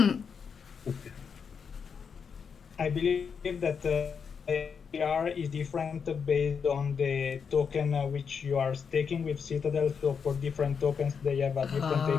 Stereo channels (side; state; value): right; quieter; 6.3 dB